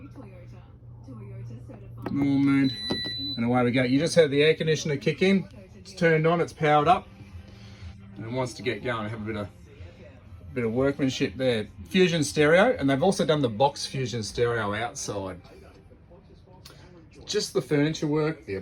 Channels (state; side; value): identical; both; correlation 1.00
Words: Normal mode. And away we go. You just heard the air conditioner kick in. It's turned on, it's powered up. And it wants to get going. Have a bit of workmanship there. Fusion stereo, and they've also done the box Fusion stereo outside. Just the furniture work, the